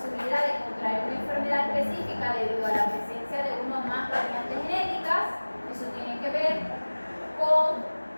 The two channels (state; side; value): inverted; both; correlation -1.00